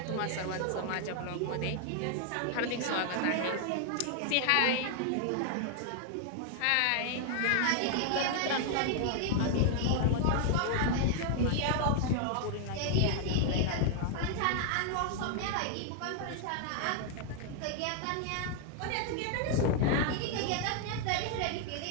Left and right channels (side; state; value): both; different; correlation 0.00